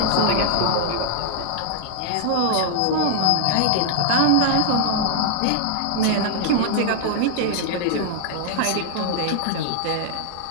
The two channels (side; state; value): both; different; correlation 0.00